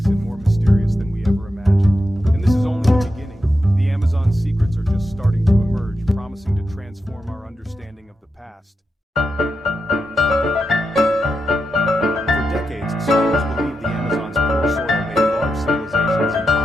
and more mysterious than we ever imagined. And this is only the beginning. The Amazon's secrets are just starting to emerge, promising to transform our understanding of the past. For decades, scholars believed the Amazon's poor soil made large civilizations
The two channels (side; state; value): both; normal; correlation 0.87